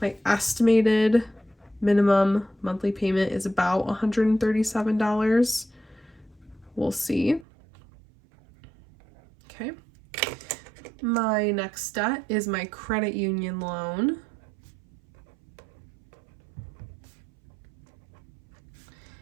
estimated minimum monthly payment is about $137. We'll see. Okay. My next debt is my credit union loan.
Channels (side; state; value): left; drops out; at 7.5 s